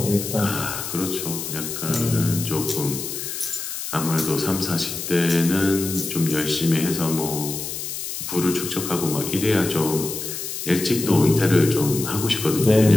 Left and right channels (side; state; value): left; noise; hiss, 6 dB below the sound